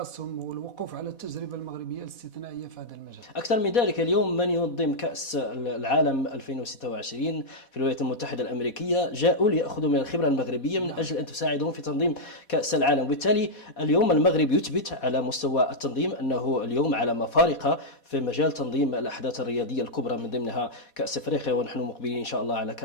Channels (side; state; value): right; late; 4.1 ms